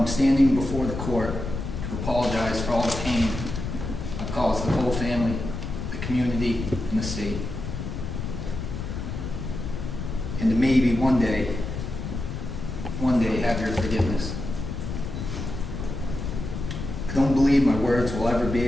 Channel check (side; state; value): left; noise; rumble, 5 dB below the sound